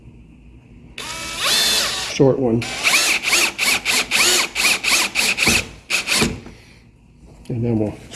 Short one. And then we'll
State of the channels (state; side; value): identical; both; correlation 1.00